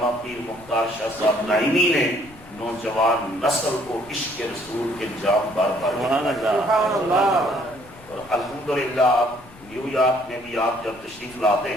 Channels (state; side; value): noise; left; rumble, 23 dB below the sound